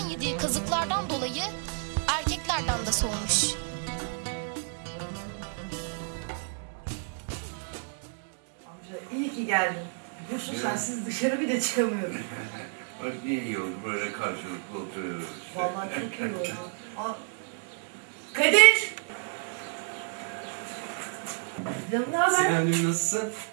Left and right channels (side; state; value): left; silent; 58 dB below the other